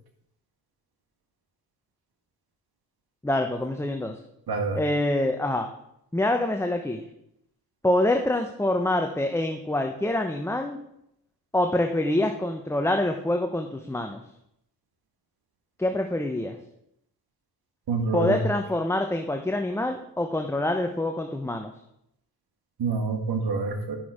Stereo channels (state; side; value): normal; both; correlation 0.70